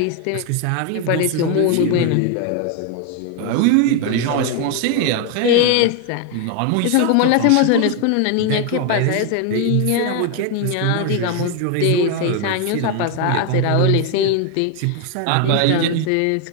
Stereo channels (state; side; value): different; both; correlation 0.01